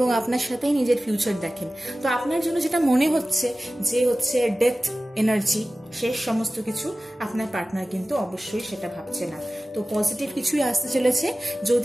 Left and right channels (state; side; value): normal; both; correlation 0.96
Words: আপনার সাথেই নিজের ফিউচার দেখেন। তো আপনার জন্য যেটা মনে হচ্ছে যে হচ্ছে ডেথ এনার্জি, শেষ সমস্ত কিছু, আপনার পার্টনার কিন্তু অবশ্যই সেটা ভাবছে না। তো পজিটিভ কিছুই আসতে চলেছে।